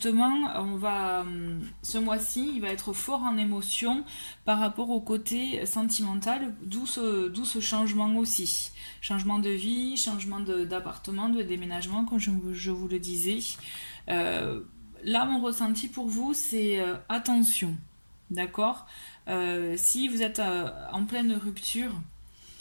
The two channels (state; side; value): inverted; both; correlation -1.00